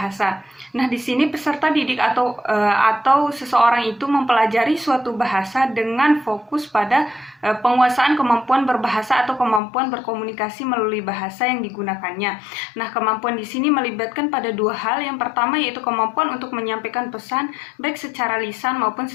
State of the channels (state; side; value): drops out; right; at 9.6 s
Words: Nah, di sini peserta didik atau seseorang itu mempelajari suatu bahasa dengan fokus pada penguasaan kemampuan berbahasa atau kemampuan berkomunikasi melalui bahasa yang digunakannya. Nah, kemampuan di sini melibatkan pada 2 hal. Yang pertama yaitu kemampuan untuk menyampaikan pesan baik secara lisan maupun